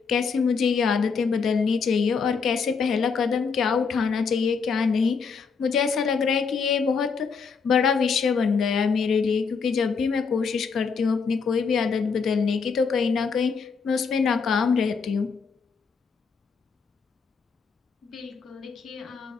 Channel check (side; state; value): right; quieter; 5.5 dB